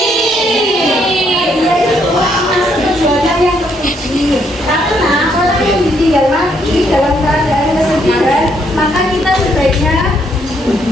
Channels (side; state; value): both; normal; correlation 0.72